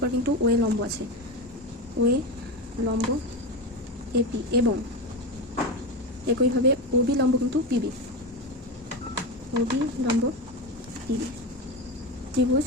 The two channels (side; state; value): both; normal; correlation 0.19